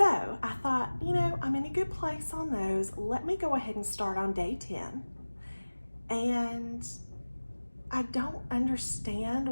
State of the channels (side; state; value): both; inverted; correlation -1.00